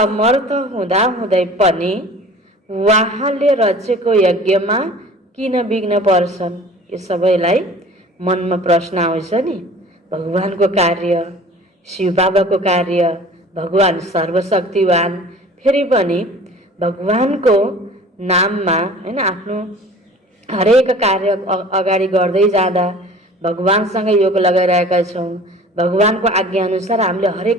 हुँदै पनि उहाँले रचेको यज्ञमा किन विघ्न पर्छन्? यो सबैलाई मनमा प्रश्न आउँछ नि। भगवानको कार्य, शिव बाबाको कार्य, भगवान सर्वशक्तिवान, फेरि पनि भगवानको नाममा हैन आफ्नो हरेक कार्य अगाडि गर्दै जाँदा भगवानसँग योग लगाइरहेका छौँ। भगवानको आज्ञा अनुसार हामीले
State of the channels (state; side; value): normal; both; correlation 0.45